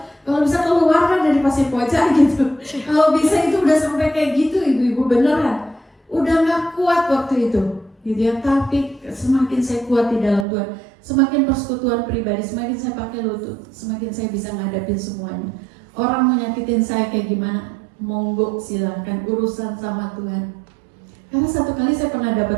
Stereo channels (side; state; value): left; drops out; at 10.5 s